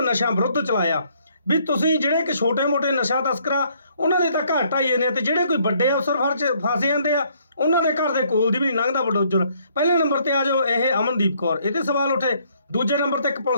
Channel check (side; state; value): both; inverted; correlation -0.66